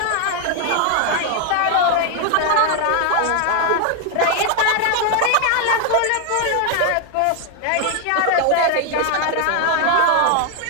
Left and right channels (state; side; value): different; both; correlation 0.00